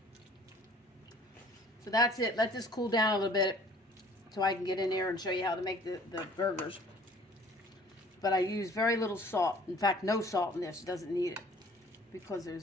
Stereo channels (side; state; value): both; normal; correlation 0.52